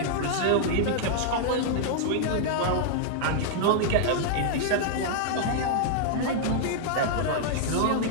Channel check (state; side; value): different; both; correlation -0.01